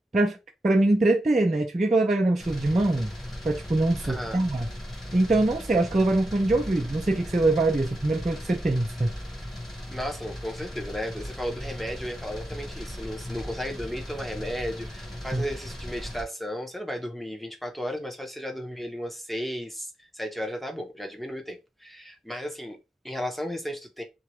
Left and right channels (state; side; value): normal; both; correlation 0.87